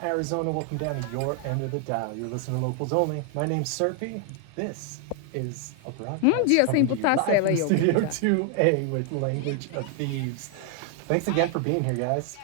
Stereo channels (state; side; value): different; both; correlation 0.00